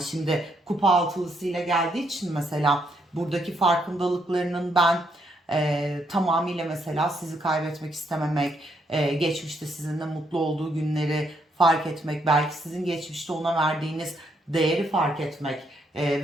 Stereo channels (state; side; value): normal; both; correlation 0.74